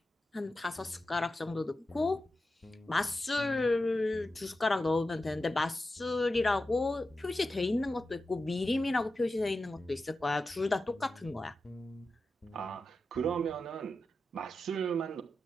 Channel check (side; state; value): both; normal; correlation 0.91